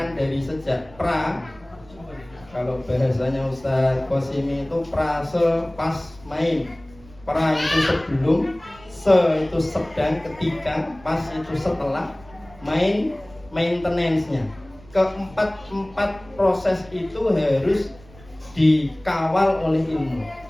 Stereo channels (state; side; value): noise; right; rumble, 23 dB below the sound